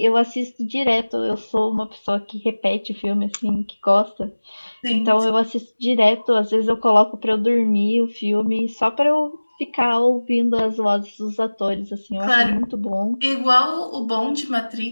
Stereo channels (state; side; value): inverted; both; correlation -1.00